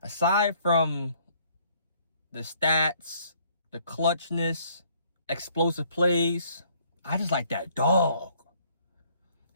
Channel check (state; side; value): inverted; both; correlation -0.62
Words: from the stats, the clutchness, explosive plays, I just like that dog.